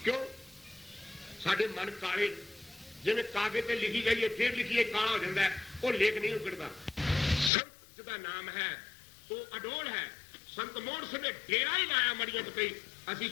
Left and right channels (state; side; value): drops out; right; at 7.5 s